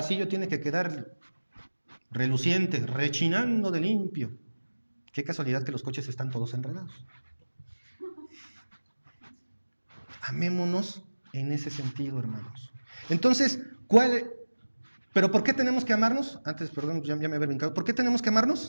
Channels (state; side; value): inverted; both; correlation -1.00